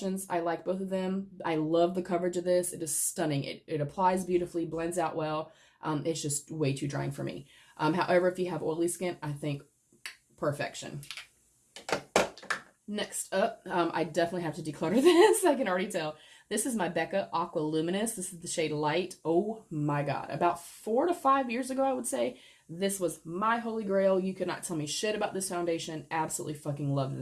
I like both of them. I love the coverage of this. It is stunning. It applies beautifully, blends out well. It's just way too drying for me. However, if you have oily skin, I think perfection. Next up, I definitely have to declutter this. I can already tell. This is my Becca Aqua Luminous. This is the shade Light. Oh my God. About 4 to 5 years ago, I would say, this was my holy grail. You could not tell me shit about this foundation. Absolutely fucking loved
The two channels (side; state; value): both; identical; correlation 1.00